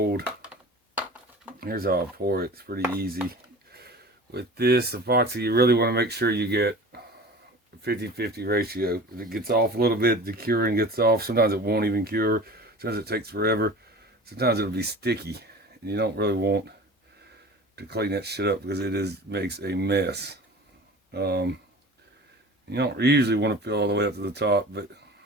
Here's how I pour it. It's pretty easy. With this epoxy, you really want to make sure you get 50-50 ratio. If it gets off a little bit, the curing gets off. Sometimes it won't even cure. Sometimes it takes forever. Sometimes it'll be sticky. And you don't really want to clean that shit up because it makes a mess. You don't usually want to fill all the way up to the top, but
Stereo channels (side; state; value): both; normal; correlation 0.38